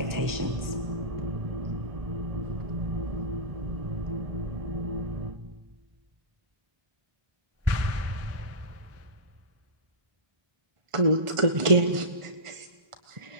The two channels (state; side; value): late; left; 1.4 ms